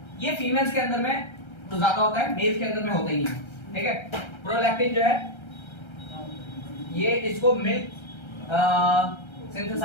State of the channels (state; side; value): late; right; 1.3 ms